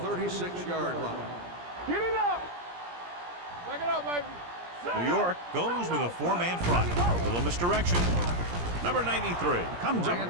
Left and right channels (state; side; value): late; left; 17 ms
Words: 36-yard line. Get it up. Back it up, baby. New York goes with a 4-man front. A little misdirection. Number 93 comes up